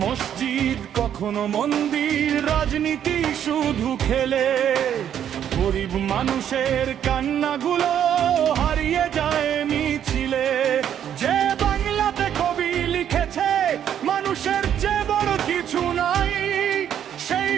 মসজিদ কখনো মন্দির, রাজনীতি শুধু খেলে। গরিব মানুষের কান্নাগুলো হারিয়ে যায় মিছিলে। যে বাংলাতে কবি লিখেছে মানুষের চেয়ে বড় কিছু নাই, সেই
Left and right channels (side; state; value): left; quieter; 9.6 dB